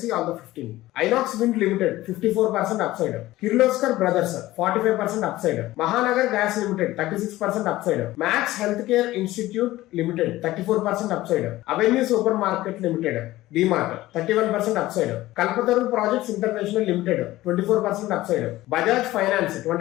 see all the 15. Inox wind limited 54% upside, Kirloskar brothers 45% upside, Mahanagar gas limited 36% upside, max health care institute limited 34% upside, avenue super market limited DMart 31% upside, Kalpataru projects international limited 24% upside, Bajaj finance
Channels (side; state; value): right; quieter; 16.7 dB